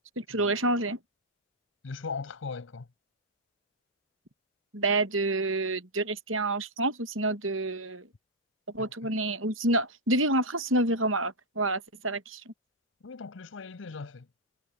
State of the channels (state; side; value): normal; both; correlation -0.07